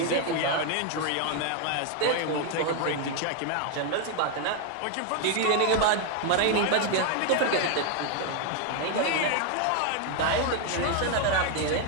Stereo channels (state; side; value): different; both; correlation 0.01